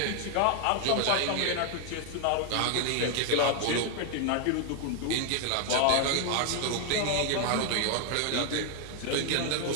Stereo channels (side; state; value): both; different; correlation 0.00